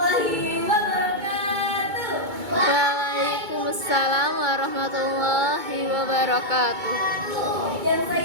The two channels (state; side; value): late; left; 2.2 ms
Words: wabarakatuh. Waalaikumsalam warahmatullahi wabarakatuh. Yang